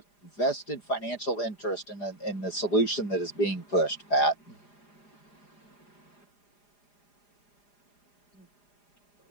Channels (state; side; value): late; right; 4.9 ms